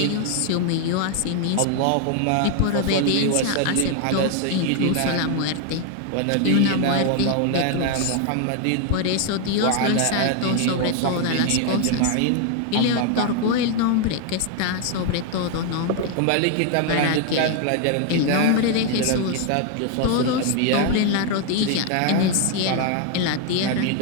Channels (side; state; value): both; different; correlation 0.00